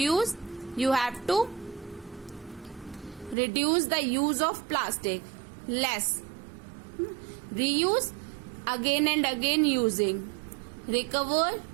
you have to reduce the use of plastic, less. Reuse, again and again using. Recover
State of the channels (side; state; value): left; drops out; at 3.4 s